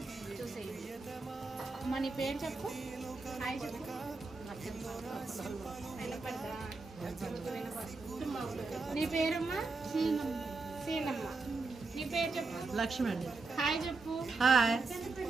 చూసేయండి. అమ్మ నీ పేరు చెప్పు, హాయ్ చెప్పు. నీ పేరమ్మా? సీనమ్మ. నీ పేరు చెప్పు. లక్ష్మి అండి. హాయ్ చెప్పు. హాయ్.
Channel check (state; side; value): quieter; left; 3.8 dB